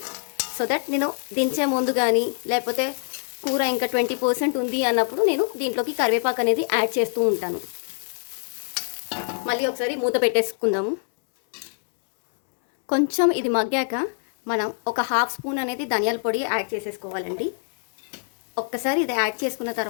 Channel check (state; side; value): silent; right; 62 dB below the other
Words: సో దట్ నేను దించే ముందు కానీ లేకపోతే కూర ఇంకా 20% ఉంది అన్నప్పుడు నేను దీంట్లోకి కరివేపాకు అనేది యాడ్ చేస్తూ ఉంటాను. మళ్ళీ ఒకసారి మూత పెట్టేసుకుందాము. కొంచెం ఇది మగ్గాక మనం ఒక హాఫ్ స్పూన్ అనేది ధనియాల పొడి యాడ్ చేసేసుకోవాలండి. ఒక్కసారి ఇది యాడ్ చేసుకున్న